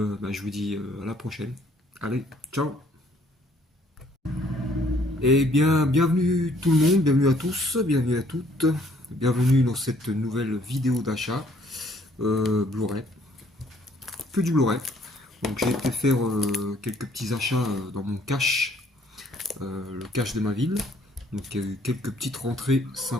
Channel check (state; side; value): normal; both; correlation 0.63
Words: vous dis à la prochaine. Allez, ciao. Eh bien, bienvenue tout le monde, bienvenue à tous, bienvenue à toutes, bienvenue dans cette nouvelle vidéo d'achat Blu-ray, que du Blu-ray. Donc j'ai été faire quelques petits achats dans mon cache, le cache de ma ville. Donc il y a eu quelques petites rentrées